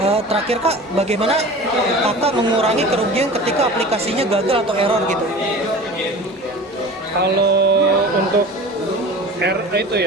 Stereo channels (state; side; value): normal; both; correlation 0.37